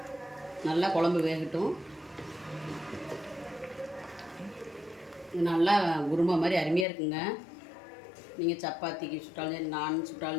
நல்லா குழம்பு வேகட்டும். இது நல்லா குருமா மாதிரி அருமையாக இருக்குங்க. நீங்கள் சப்பாத்திக்கு சுட்டாலும் சரி, நான்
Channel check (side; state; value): right; drops out; at 6.9 s